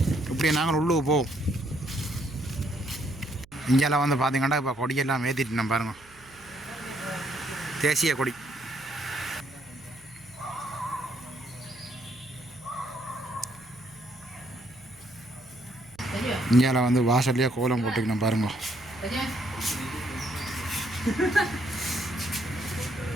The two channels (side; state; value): right; noise; hum, 26 dB below the sound